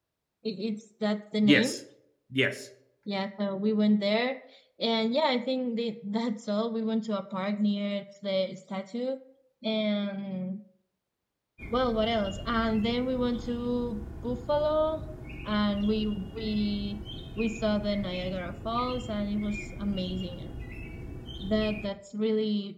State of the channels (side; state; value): both; identical; correlation 1.00